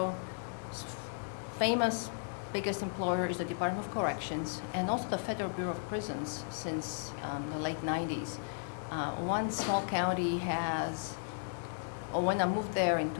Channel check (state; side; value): silent; right; digital silence